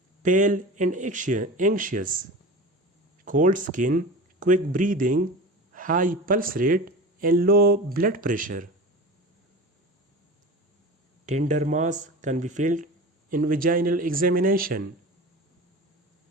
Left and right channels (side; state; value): both; normal; correlation 0.33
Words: pale and anxious, cold skin, quick breathing, high pulse rate and low blood pressure. Tender mass can be felt in vaginal examination.